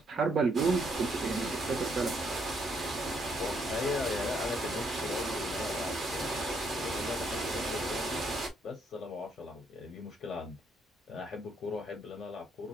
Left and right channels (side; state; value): both; normal; correlation 0.72